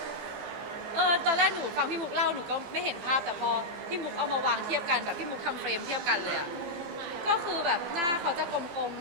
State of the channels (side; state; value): left; late; 15 ms